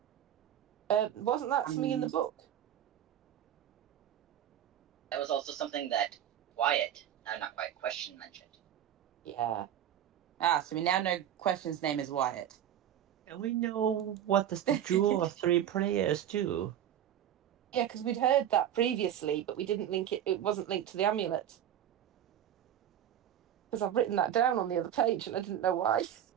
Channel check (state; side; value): quieter; left; 10.6 dB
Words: Wasn't that something in the book? That was also something that Wyatt, not Wyatt, Question mentioned. Yeah. Ah, so we now know Question's name is Wyatt. And we know what does the Jewel of 3 players do? Yeah, because we'd heard that previously, but we didn't link it. It wasn't linked to the amulet. Because I've written that down on the other page, and I didn't know why.